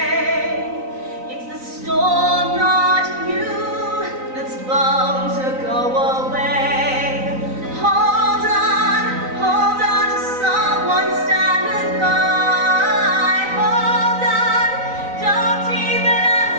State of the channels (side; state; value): left; late; 3.9 ms